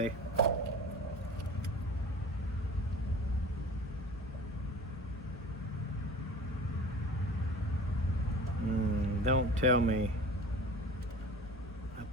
Don't tell me I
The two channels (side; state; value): both; normal; correlation 0.39